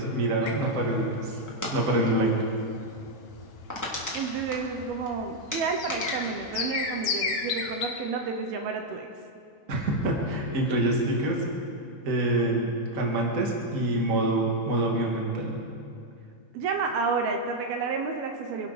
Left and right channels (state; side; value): normal; both; correlation 0.01